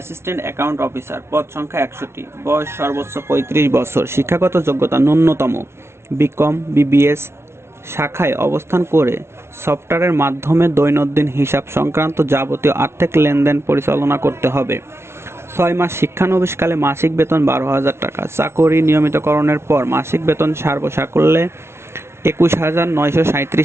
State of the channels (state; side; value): late; left; 0.12 ms